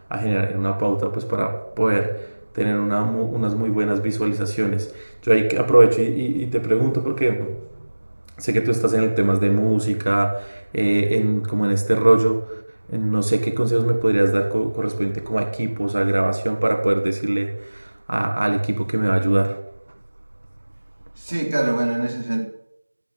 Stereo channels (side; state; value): both; inverted; correlation -1.00